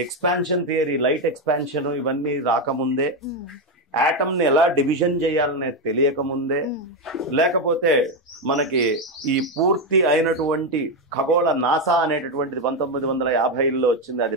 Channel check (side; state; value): both; normal; correlation 0.08